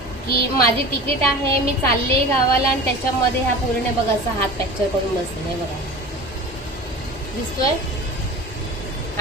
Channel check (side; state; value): both; normal; correlation 0.35